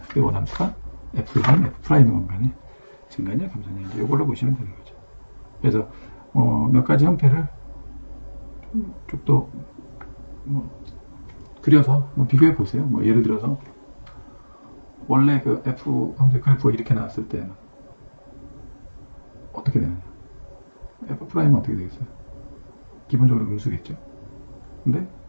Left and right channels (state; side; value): inverted; both; correlation -1.00